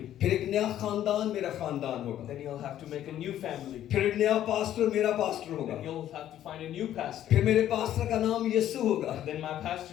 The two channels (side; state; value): right; quieter; 11.8 dB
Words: फिर एक नया खानदान मेरा खानदान होगा, Then he'll have to make a new family. फिर एक नया पास्टर मेरा पास्टर होगा, Then he'll have to find a new pastor. फिर मेरे पास्टर का नाम यीशु होगा, Then my